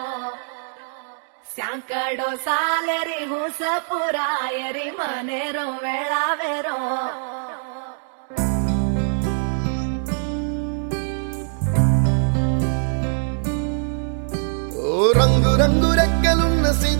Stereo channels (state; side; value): silent; left; 64 dB below the other